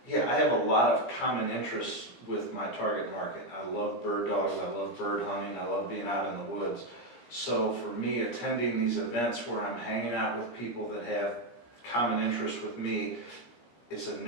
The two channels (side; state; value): right; late; 17 ms